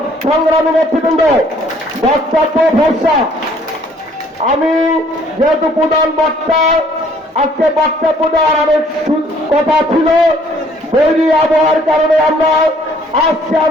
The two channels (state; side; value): normal; both; correlation 0.60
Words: সংগ্রামী নেতৃবৃন্দ, বক্তব্য ভরসা। আমি যেহেতু প্রধান বক্তা, আজকে বক্তব্য দেওয়ার অনেক কথা ছিল, বৈরী আবহাওয়ার কারণে আমরা আজকে